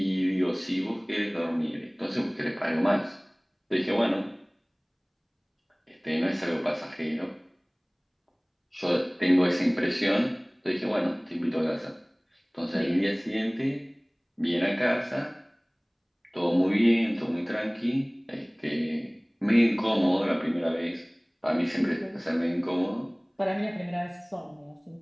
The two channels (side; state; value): both; identical; correlation 1.00